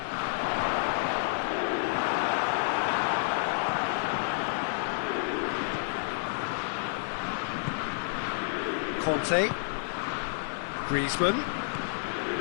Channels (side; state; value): right; silent; digital silence